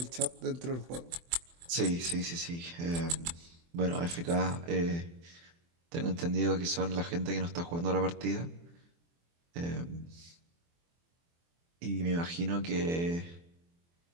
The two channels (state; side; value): late; left; 24 ms